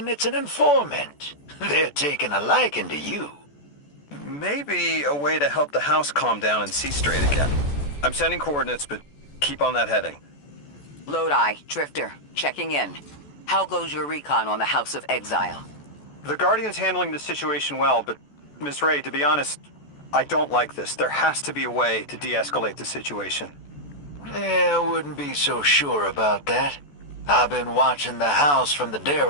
it's an informant. They're taking a liking to you. Maybe a way to help the house calm down and see straight again. I'm sending coordinates, but keep on that heading. Lodi, Drifter, checking in. How goes your recon on the House of Exile? The Guardian's handling the situation well, but Miss Ray, to be honest, I don't like this. There has to be a way to de-escalate the situation. I wouldn't be so sure about that. I've been watching the house from the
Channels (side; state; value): right; late; 14 ms